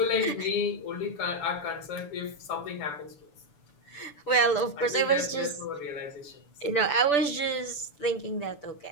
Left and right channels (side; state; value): right; late; 6.9 ms